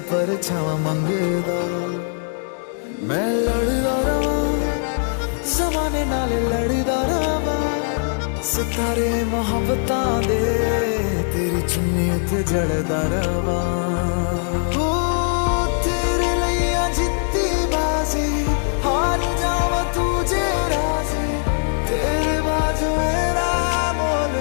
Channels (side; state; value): right; silent; digital silence